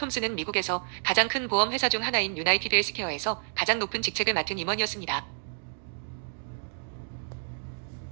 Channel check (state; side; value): silent; left; digital silence